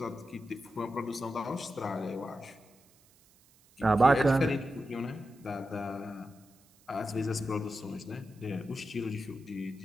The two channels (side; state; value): right; noise; hiss, 29 dB below the sound